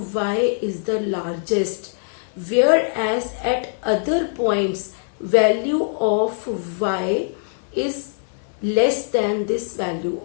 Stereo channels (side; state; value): right; silent; 64 dB below the other